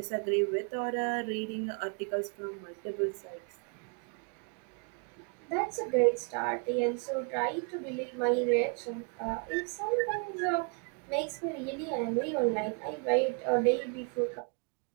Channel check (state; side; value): quieter; left; 35.0 dB